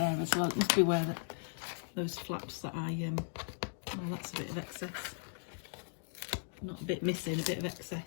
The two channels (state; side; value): silent; right; digital silence